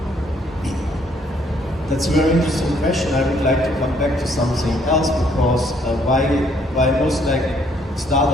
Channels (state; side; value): normal; both; correlation 0.66